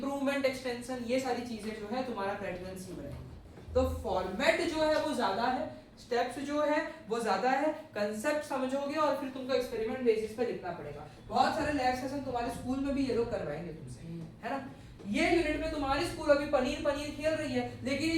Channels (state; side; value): identical; both; correlation 1.00